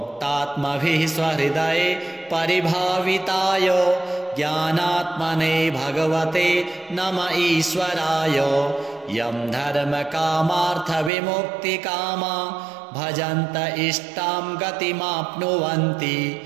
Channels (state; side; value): drops out; left; at 11.1 s